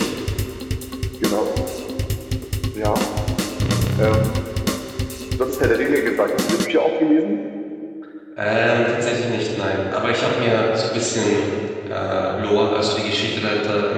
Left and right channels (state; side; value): identical; both; correlation 1.00